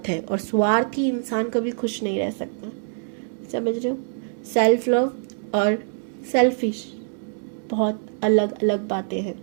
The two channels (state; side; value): silent; left; digital silence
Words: है, और स्वार्थी इंसान कभी खुश नहीं रह सकता। समझ रहे हो? सेल्फ लव और सेल्फिश बहुत अलग अलग बातें हैं,